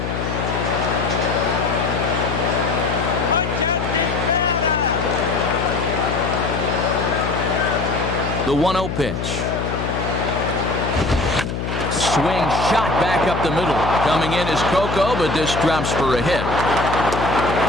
The 1-0 pitch. Swing shot back up the middle. Coming in is Coco, but this drops for a hit.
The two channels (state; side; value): noise; left; hum, 4 dB below the sound